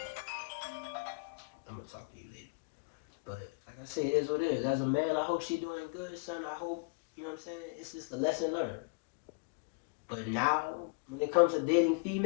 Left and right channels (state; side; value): quieter; right; 34.2 dB